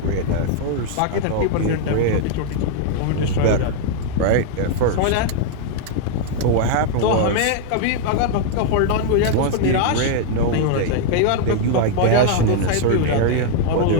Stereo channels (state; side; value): different; both; correlation 0.00